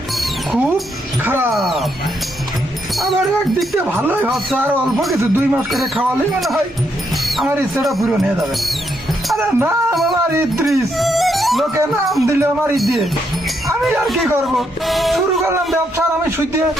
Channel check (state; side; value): normal; both; correlation 0.78